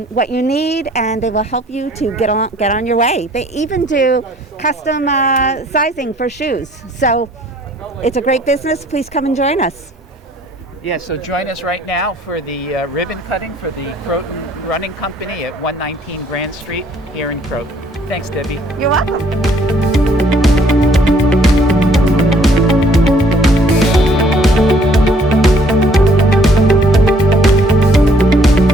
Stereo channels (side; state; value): both; normal; correlation 0.61